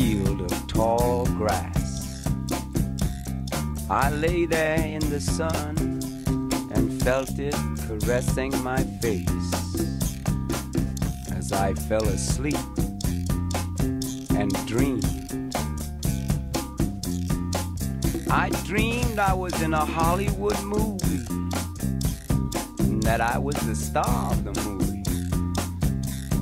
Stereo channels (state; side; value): identical; both; correlation 1.00